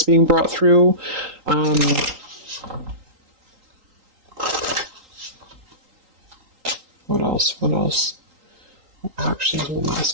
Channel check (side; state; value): left; late; 3.8 ms